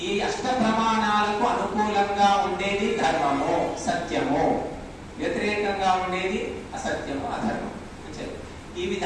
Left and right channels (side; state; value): both; identical; correlation 1.00